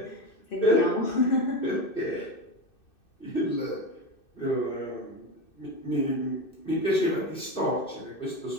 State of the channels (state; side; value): late; right; 2.6 ms